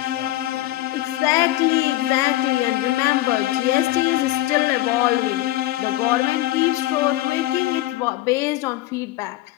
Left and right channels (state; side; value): quieter; right; 16.2 dB